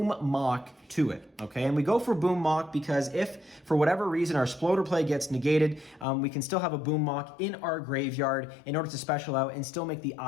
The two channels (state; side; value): drops out; right; at 6.1 s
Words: Mock to it, okay? And we go for Boom Mock because if, for whatever reason, our Sploder play gets negated, we can still have a Boom Mock in our graveyard in order to special out and still make the